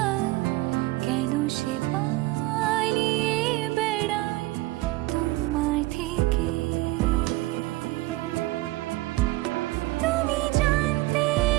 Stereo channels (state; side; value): quieter; left; 19.5 dB